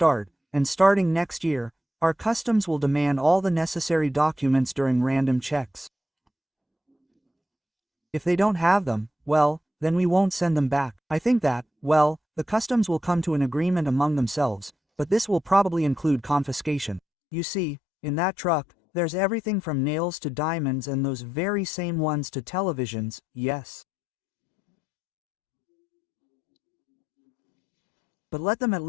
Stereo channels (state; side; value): drops out; right; at 17.0 s